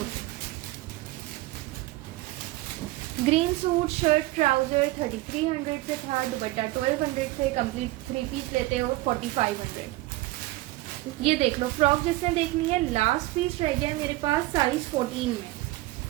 ग्रीन सूट शर्ट ट्राउजर 3300 से था, दुपट्टा 1200 से, कंप्लीट 3 पीस लेते हो 4500। ये देख लो, फ्रॉक जिसने देखनी है लास्ट पीस रह गया मेरे पास साइज 14 में।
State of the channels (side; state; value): left; quieter; 18.6 dB